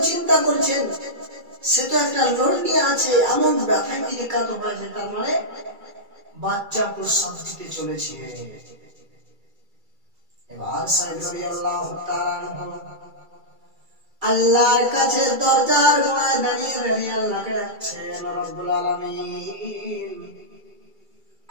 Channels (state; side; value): late; left; 2.3 ms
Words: চিন্তা করছেন সে তো একটা লোড নিয়ে আছে, এমন ব্যথায় তিনি কাতর হয়েছে, তার মানে বাচ্চা প্রসব দিতে চলেছে। এবার সাইদ রাদিয়াল্লাহু তাআলা আল্লাহর কাছে দরজার গোড়ায় দাঁড়িয়ে আল্লাহকে ডাকছেন, রব্বুল আলামিন